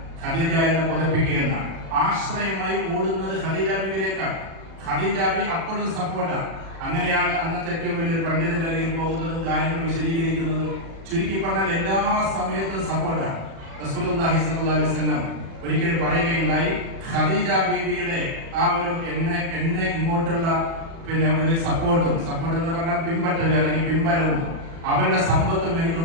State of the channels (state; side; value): late; left; 36 ms